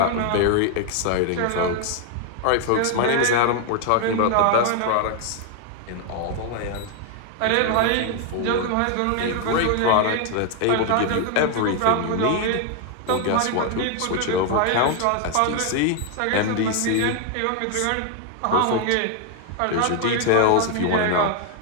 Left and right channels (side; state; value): both; different; correlation 0.00